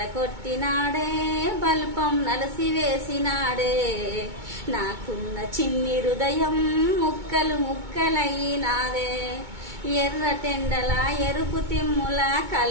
కొట్టినాడే బల్పం నలసి వేసినాడే నాకున్న చిన్ని హృదయం ముక్కలు ముక్కలయ్యినాదే ఎర్రటెండల ఎరుపు తిమ్ముల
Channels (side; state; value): left; late; 2.2 ms